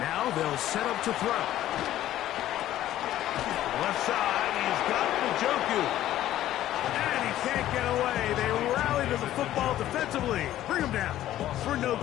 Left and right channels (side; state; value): right; quieter; 13.3 dB